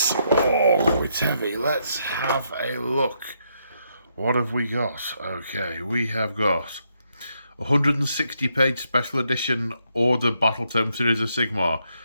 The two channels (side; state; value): both; inverted; correlation -0.77